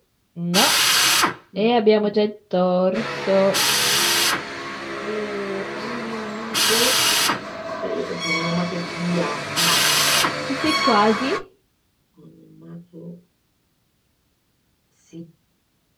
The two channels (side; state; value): both; identical; correlation 1.00